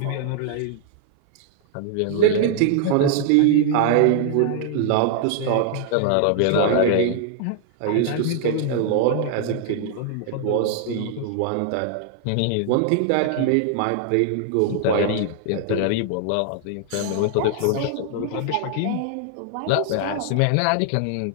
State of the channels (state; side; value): different; both; correlation 0.00